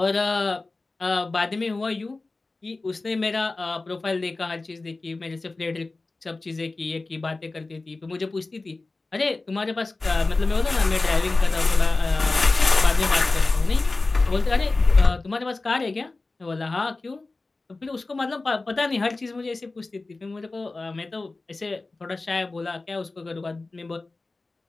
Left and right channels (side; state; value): right; quieter; 3.4 dB